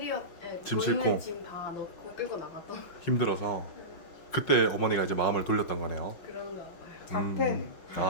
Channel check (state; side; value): late; right; 5.8 ms